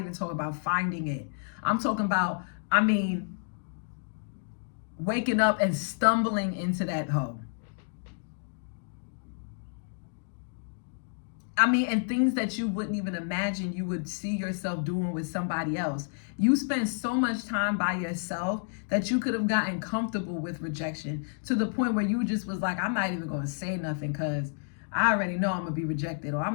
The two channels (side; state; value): right; silent; digital silence